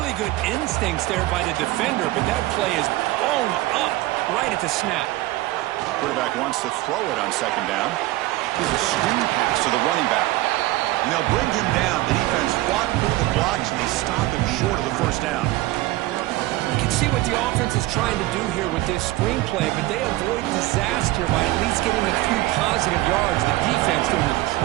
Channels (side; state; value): left; quieter; 18.0 dB